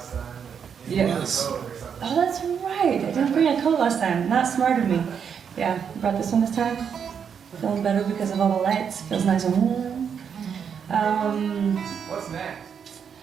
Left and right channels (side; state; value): left; quieter; 7.3 dB